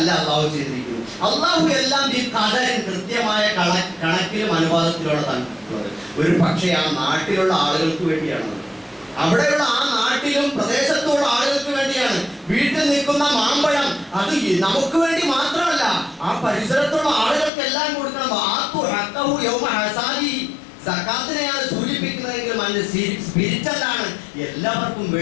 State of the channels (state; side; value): drops out; right; at 17.5 s